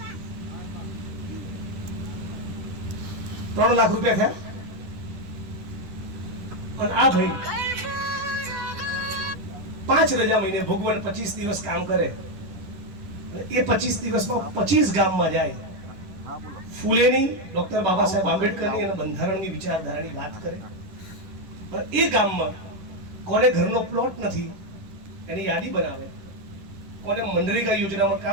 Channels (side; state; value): left; late; 11 ms